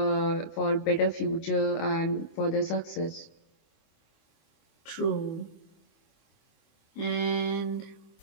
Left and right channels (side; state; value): right; late; 24 ms